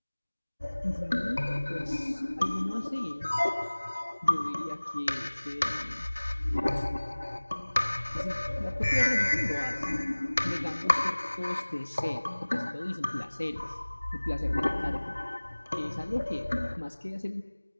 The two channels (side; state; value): both; inverted; correlation -1.00